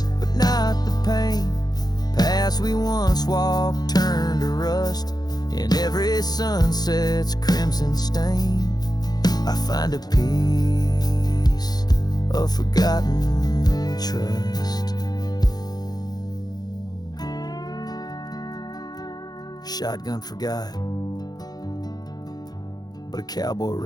but not the pain. Paths we once walked turn to rust, in every sunset's crimson stain. I find a piece of forgotten trust. Shotgun forgot, but a cowboy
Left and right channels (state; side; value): late; right; 0.19 ms